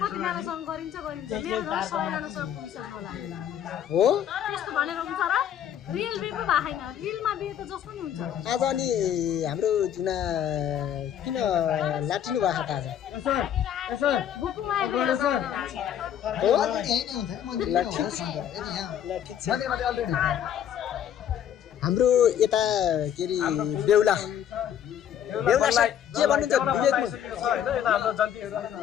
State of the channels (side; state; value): right; quieter; 9.8 dB